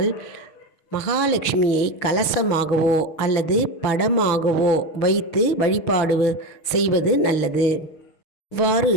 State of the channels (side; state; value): right; late; 6.5 ms